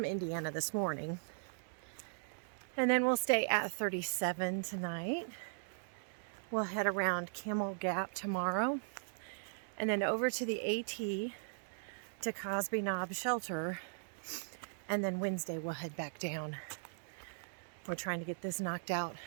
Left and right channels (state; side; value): silent; left; digital silence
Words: Indiana this morning. And then we'll stay at 37 tonight. We'll head around Camel Gap tomorrow. And then over to the AT to Cosby Knob Shelter. And then Wednesday we'll head back down. We're trying to get this knocked out